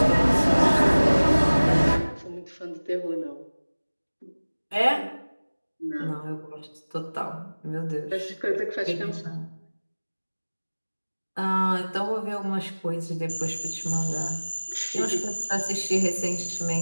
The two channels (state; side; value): inverted; both; correlation -1.00